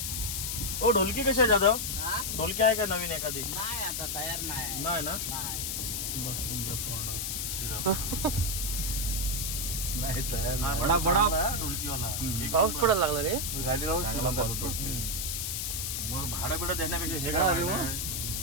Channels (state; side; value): noise; left; hiss, 2 dB below the sound